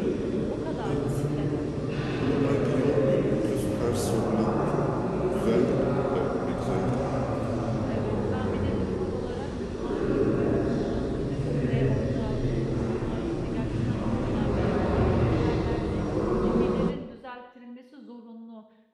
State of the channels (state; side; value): identical; both; correlation 1.00